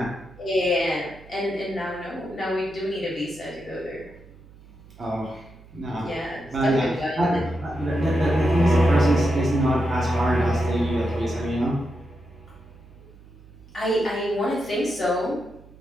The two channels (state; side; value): noise; right; hum, 22 dB below the sound